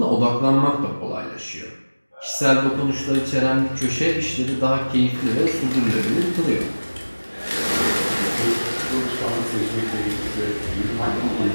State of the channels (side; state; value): both; inverted; correlation -1.00